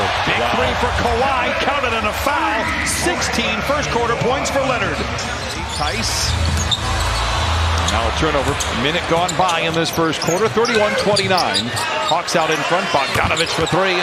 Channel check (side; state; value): both; identical; correlation 1.00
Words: Big 3 for Kawhi. Counted on a foul. 16 first quarter points for Leonard. Tice. Now a turnover. A minute gone by in this first quarter. 31-29. Hawks out in front. Bogdanovic for 3